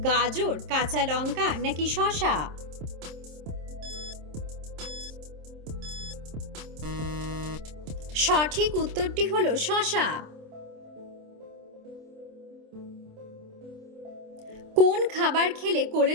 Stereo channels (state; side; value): late; left; 27 ms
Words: গাজর, কাঁচা লঙ্কা নাকি শসা। সঠিক উত্তরটি হলো শসা। কোন খাবার খেলে